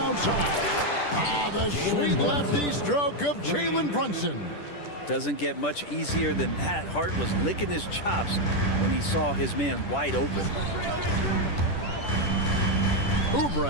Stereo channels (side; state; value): right; late; 10 ms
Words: The sweet lefty stroke of Jalen Brunson. Doesn't get much easier than that. Hart was licking his chops when he saw his man wide open.